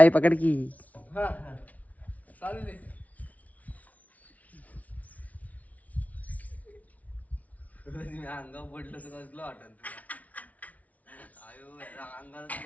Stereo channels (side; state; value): right; late; 0.070 ms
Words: पकड की. चालू दे. अंगावर पडलं तर कसलं वाटत अंगात